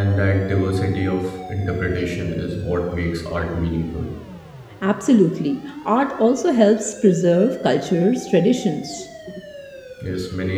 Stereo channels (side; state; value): both; identical; correlation 1.00